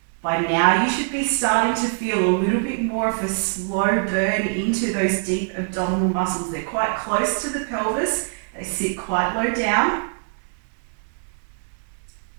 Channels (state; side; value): silent; left; 63 dB below the other